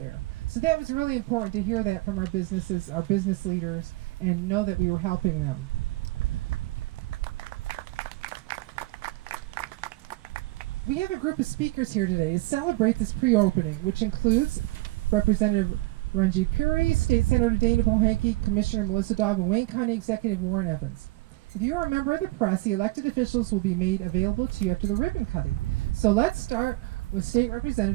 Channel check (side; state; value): left; quieter; 20.4 dB